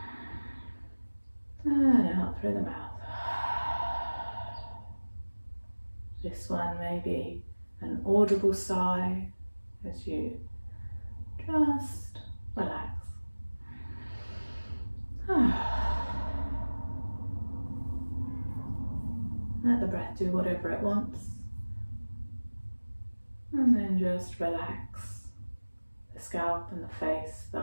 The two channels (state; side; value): inverted; both; correlation -1.00